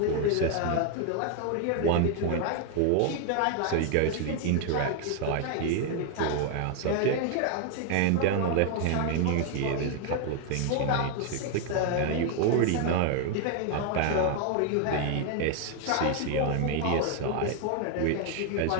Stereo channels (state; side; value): different; both; correlation 0.00